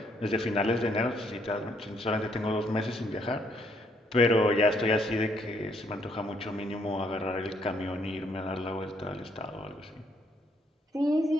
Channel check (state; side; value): normal; both; correlation 0.70